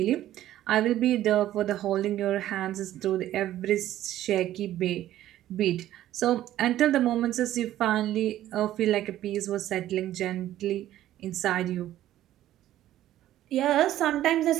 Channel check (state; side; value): quieter; left; 13.3 dB